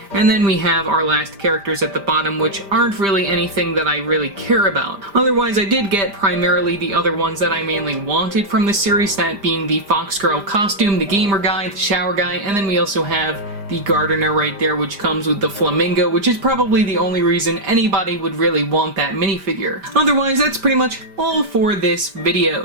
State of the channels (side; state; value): left; late; 5.0 ms